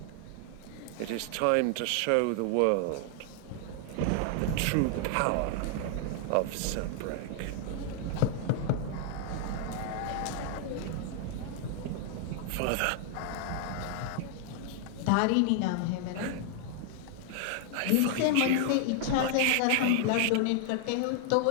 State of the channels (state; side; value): different; both; correlation 0.00